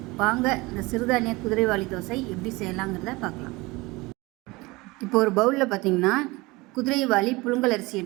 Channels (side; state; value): left; quieter; 22.9 dB